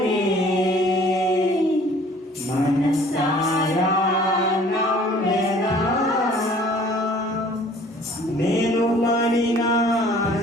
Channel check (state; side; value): normal; both; correlation 0.53